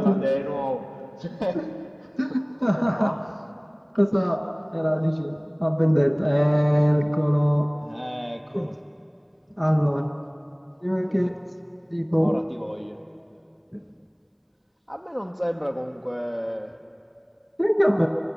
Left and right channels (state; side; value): identical; both; correlation 1.00